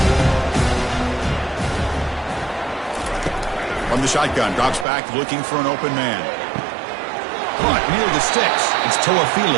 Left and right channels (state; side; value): drops out; left; at 4.9 s